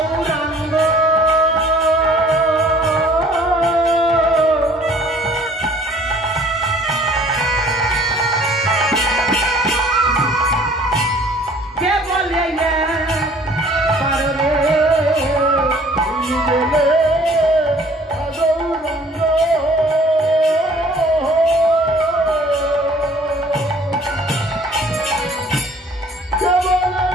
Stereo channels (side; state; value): both; normal; correlation 0.54